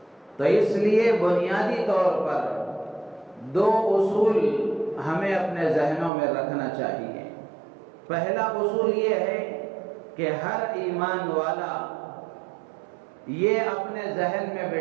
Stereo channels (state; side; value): drops out; left; at 6.1 s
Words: تو اس لیے بنیادی طور پر دو اصول ہمیں اپنے ذہنوں میں رکھنا چاہیے۔ پہلا اصول یہ ہے کہ ہر ایمان والا یہ اپنے ذہن میں